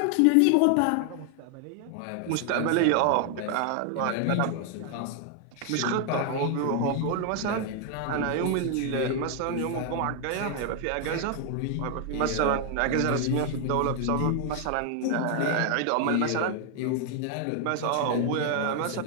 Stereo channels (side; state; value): both; different; correlation 0.00